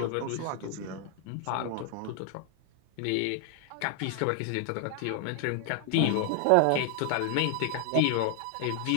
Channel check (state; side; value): different; both; correlation 0.00